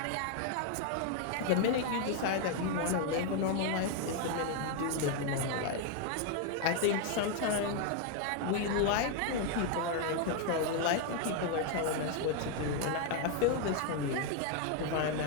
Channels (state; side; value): different; both; correlation 0.01